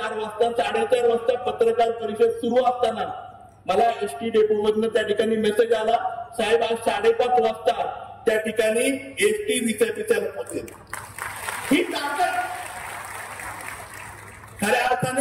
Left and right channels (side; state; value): both; identical; correlation 1.00